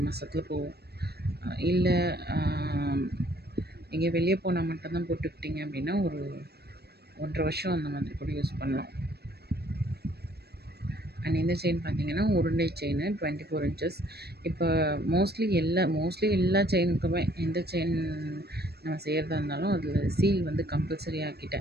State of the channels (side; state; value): left; late; 0.47 ms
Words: மாதத்துல போகும். இல்லை எங்கேயோ வெளியே போனால் மட்டும்தான் போட்டுக்கிட்டிங்க அப்படின்னா ஒரு 1.5 வருஷம் அந்த மாதிரி கூட யூஸ் பண்ணலாம். அண்ட் இந்த செயின் பார்த்தீங்கன்னா உருண்டை செயின் 24 இன்ச்சஸ். இப்போ மோஸ்ட்லி எல்லா செயினுக்குமே எந்த செயின் நம்ம செய்கிறதா இருந்தாலும் அதில் சீல் வந்து கம்பல்சரி